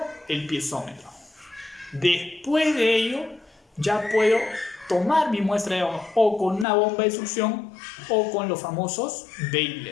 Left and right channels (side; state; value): right; drops out; at 6.7 s